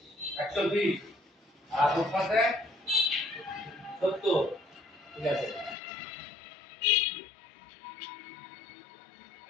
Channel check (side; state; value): right; drops out; at 5.8 s